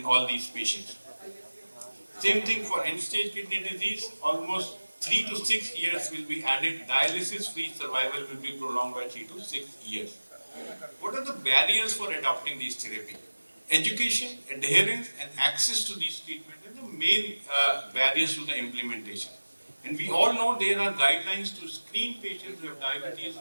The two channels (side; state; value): both; inverted; correlation -1.00